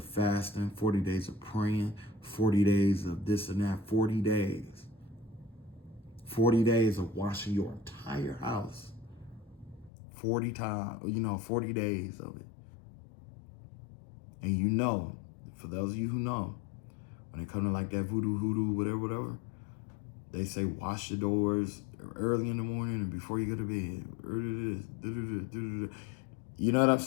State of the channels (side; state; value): right; drops out; at 9.9 s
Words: fasting, 40 days of praying, 40 days of this and that, 40 days. 40 days of washing your entire house. 40 times, you know, 40 days of it. And you know, for those of you who know, when it comes to like that voodoo, whatever, they say wash your doors early in the morning and before you go to bed. You know what I'm